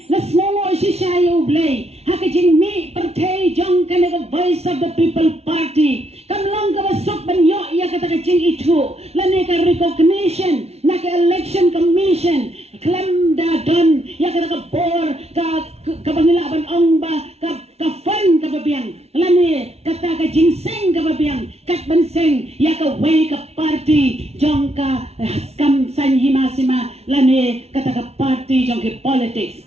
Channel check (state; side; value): late; left; 0.31 ms